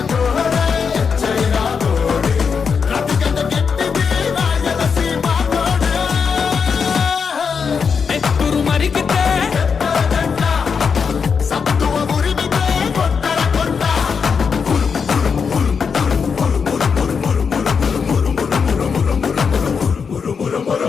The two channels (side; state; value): right; quieter; 6.0 dB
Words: కోడే చైనా కోడే, రతిగడ్డ గట్టిది రాయలసీమ కోడే. నెత్తురు మరిగితే సత్తువ ఉరిమితే కొట్టర కొండ.